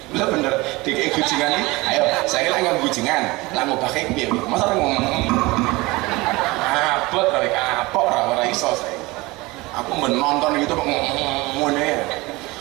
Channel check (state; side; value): quieter; left; 22.3 dB